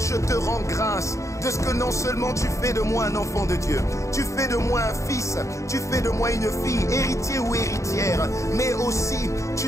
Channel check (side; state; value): right; late; 0.15 ms